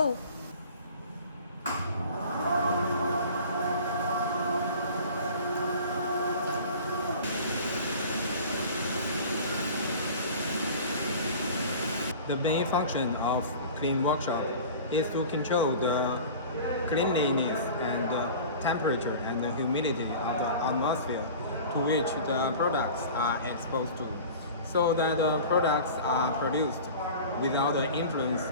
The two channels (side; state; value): both; inverted; correlation -0.40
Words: The main function of clean workshop is to control the cleanliness and the temperature and the humidity of the atmosphere to which the products are exposed to, so that the products are produced without the influence